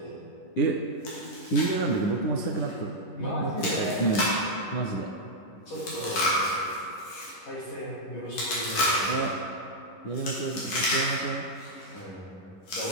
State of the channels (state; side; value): late; right; 11 ms